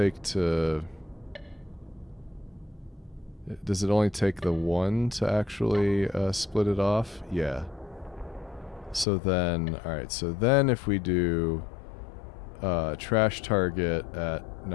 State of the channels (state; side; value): drops out; right; at 9.1 s